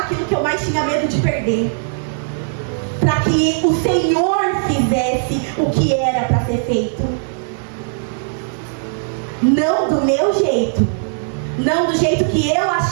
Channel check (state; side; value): silent; left; 55 dB below the other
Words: aquilo que eu mais tinha medo de perder, para que o Senhor fizesse o que era para ser feito. Não do meu jeito, não do jeito que eu